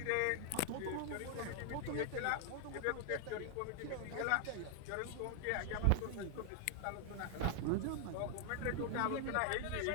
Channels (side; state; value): both; different; correlation 0.00